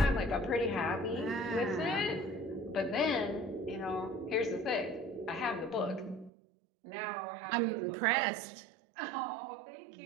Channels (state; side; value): drops out; left; at 6.3 s